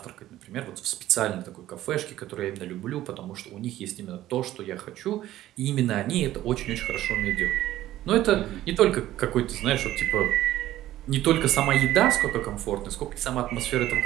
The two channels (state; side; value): quieter; left; 14.2 dB